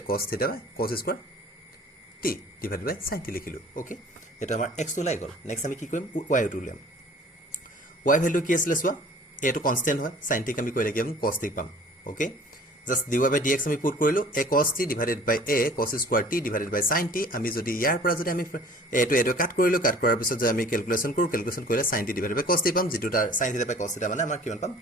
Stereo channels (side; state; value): both; normal; correlation 0.49